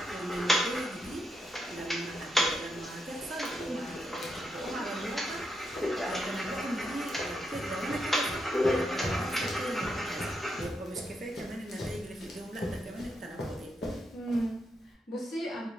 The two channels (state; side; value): normal; both; correlation 0.81